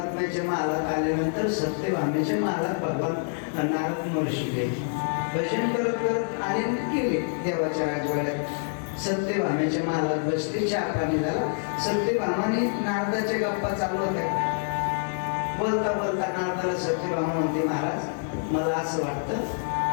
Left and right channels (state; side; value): silent; right; 60 dB below the other